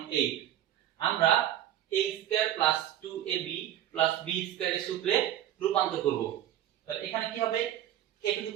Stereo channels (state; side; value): quieter; left; 11.7 dB